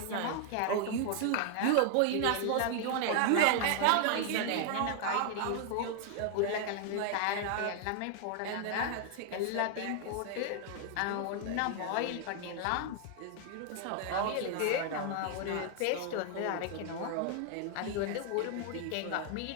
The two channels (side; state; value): both; different; correlation 0.00